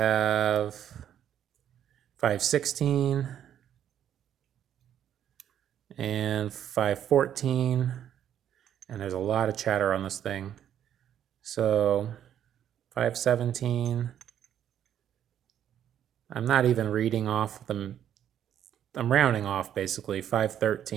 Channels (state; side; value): quieter; left; 10.1 dB